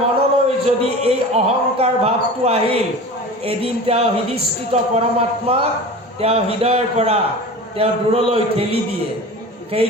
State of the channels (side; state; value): both; normal; correlation 0.35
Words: মনলৈ যদি এই অহংকাৰ ভাৱটো আহিল, এদিন তেওঁ হৃদিস্থিত পৰমাত্মাক তেওঁ হৃদয়ৰ পৰা তেওঁ দূৰলৈ ঠেলি দিয়ে।